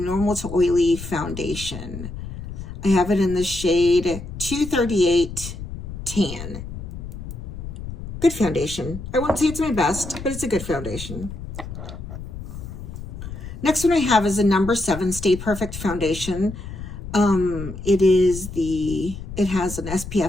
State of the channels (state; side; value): noise; left; rumble, 9 dB below the sound